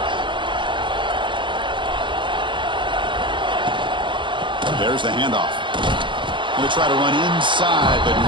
There's the handoff. Going to try to run inside, but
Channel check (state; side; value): late; left; 0.23 ms